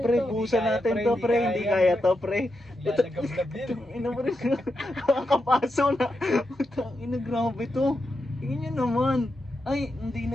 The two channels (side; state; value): both; normal; correlation 0.86